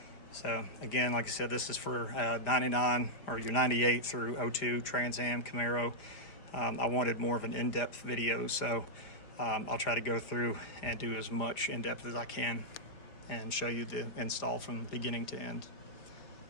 So again, like I said, this is for 99 or your 98 through 02 Trans Am Camaro. I wanted more of an in-depth video, so I'll try to go through and do as much in-depth as I can and show you the install from beginning to end.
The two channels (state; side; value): late; right; 5.0 ms